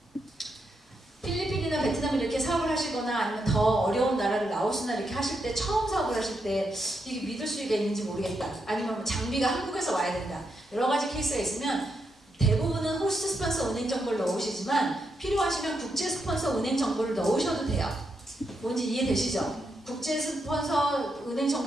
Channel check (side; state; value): both; normal; correlation 0.82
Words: 필리핀이나 베트남 이렇게 사업을 하시거나 아니면 더 어려운 나라를 라오스나 이렇게 하실 때 처음 사업을 하실 때 이게 믿을 수가 있는지 모르겠다. 아니면 장비가 한국에서 와야 된다. 여러 가지 케이스가 있으면 대부분은 호스트 스폰서 은행 정보를 넣으시지만 필요하시면 국제 스폰서 은행 정보를 넣으셔도 돼요. 뭔지 이해되시죠? 국제 스폰서 은행